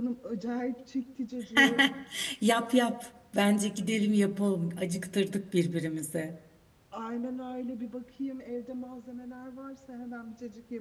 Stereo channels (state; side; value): identical; both; correlation 1.00